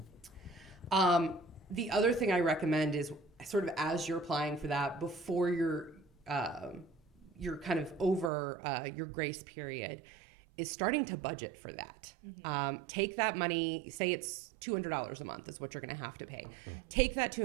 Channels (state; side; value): drops out; left; at 8.3 s